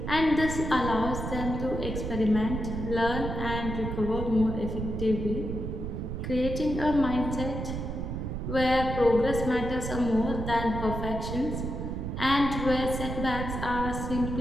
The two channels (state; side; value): noise; right; rumble, 4 dB below the sound